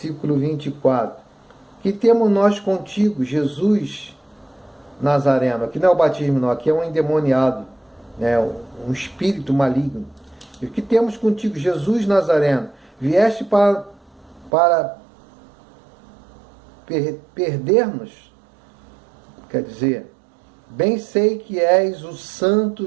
24. Que temos nós contigo, Jesus Nazareno? Aqui não é o batismo, não, aqui é um endemoniado, né? Um espírito maligno. E o que temos contigo, Jesus Nazareno? Vieste para perder-nos? Quer dizer, bem sei que és o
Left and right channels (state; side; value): drops out; left; at 14.5 s